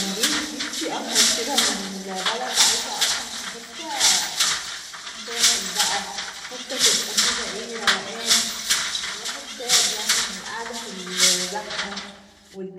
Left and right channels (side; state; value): both; identical; correlation 1.00